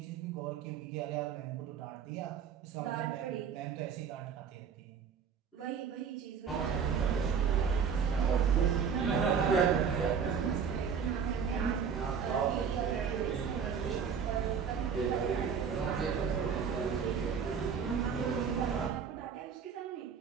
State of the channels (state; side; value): quieter; left; 6.8 dB